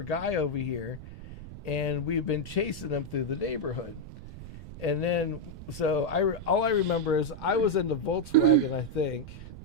guy over here. And we've been chasing him through the neighborhood. And then, so all I remember is I was in the Volkswagen, I think,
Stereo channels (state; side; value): noise; right; rumble, 13 dB below the sound